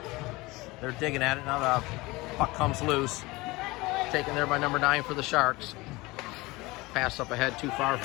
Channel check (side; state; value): right; quieter; 21.9 dB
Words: They're digging at it. Now the puck comes loose. Taken there by number 9 for the Sharks. Pass up ahead too far